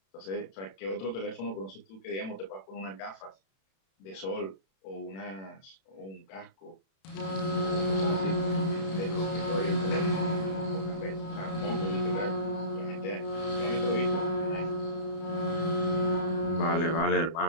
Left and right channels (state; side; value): late; right; 31 ms